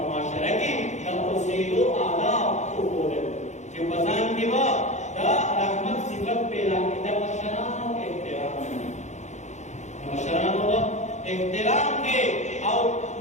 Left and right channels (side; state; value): right; late; 0.34 ms